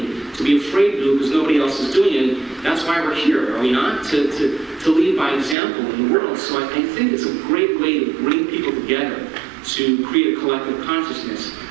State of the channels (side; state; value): left; drops out; at 5.6 s